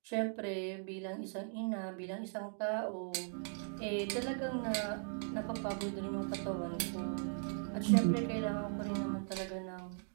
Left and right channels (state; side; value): silent; left; 52 dB below the other